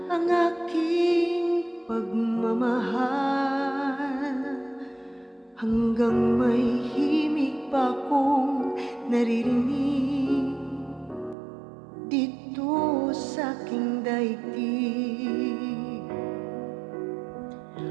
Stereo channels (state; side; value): drops out; left; at 11.4 s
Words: ang aking pagmamahal. Hanggang may himig pa akong naririnig dito sa aking daigdig.